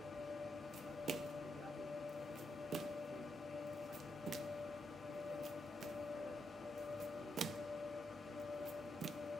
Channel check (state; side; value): normal; both; correlation 0.82